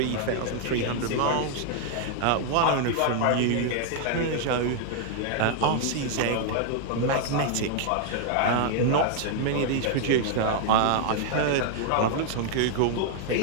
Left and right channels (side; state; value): both; different; correlation 0.00